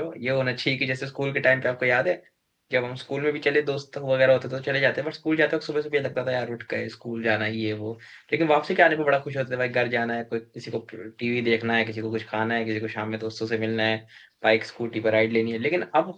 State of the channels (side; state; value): both; identical; correlation 1.00